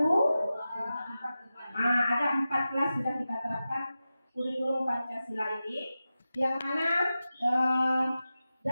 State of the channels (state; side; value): inverted; both; correlation -0.93